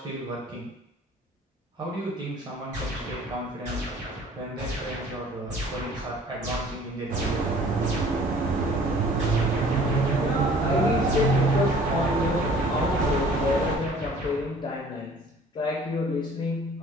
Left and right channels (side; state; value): both; normal; correlation 0.52